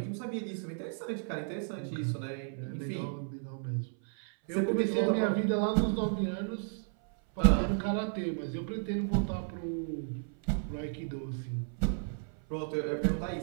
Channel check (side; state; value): left; silent; 56 dB below the other